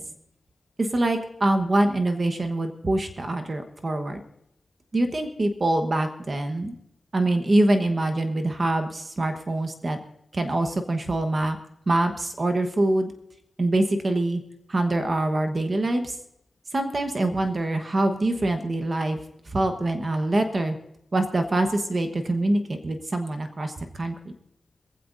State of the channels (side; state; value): both; normal; correlation 0.96